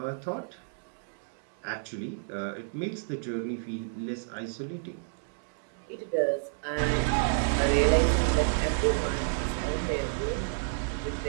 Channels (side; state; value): left; silent; digital silence